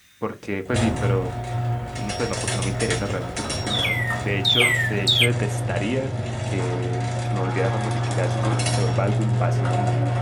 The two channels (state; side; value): identical; both; correlation 1.00